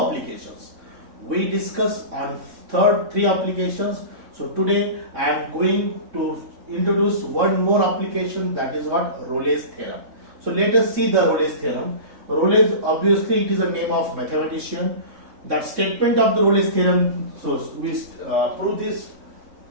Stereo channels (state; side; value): late; left; 3.6 ms